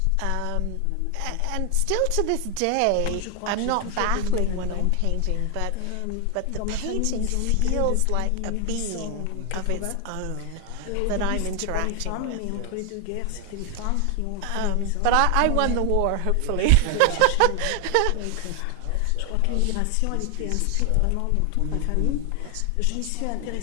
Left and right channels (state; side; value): different; both; correlation 0.00